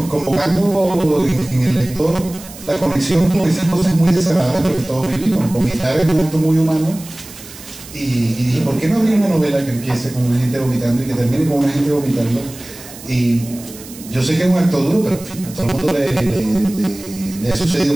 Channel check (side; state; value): right; noise; hiss, 17 dB below the sound